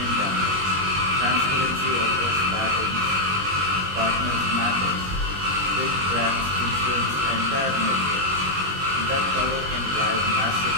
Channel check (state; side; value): late; left; 21 ms